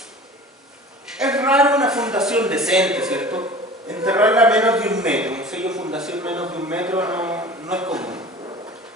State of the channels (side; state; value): both; normal; correlation 0.40